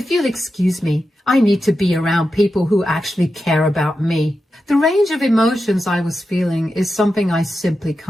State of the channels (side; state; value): both; normal; correlation 0.90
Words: you'll excuse me, I need to be around people who actually care about me. The range of emotions I was feeling is something I simply